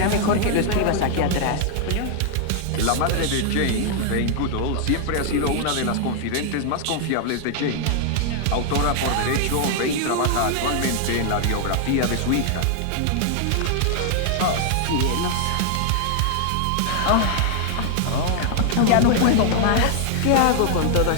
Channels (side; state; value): both; different; correlation 0.00